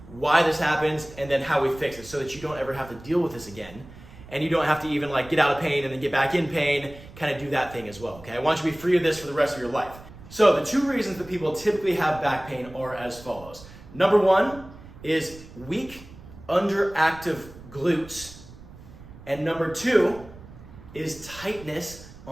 why this happens and then how we fix it so that you don't ever have to deal with this again. And you don't have to even like get out of pain and then get back in pain, kind of do that thing as well, okay? I want you to be free of this for the rest of your life. So the two reasons that people typically have back pain are as follows. Number one is weak, underactive glutes. And number two is tightness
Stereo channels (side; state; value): right; noise; rumble, 18 dB below the sound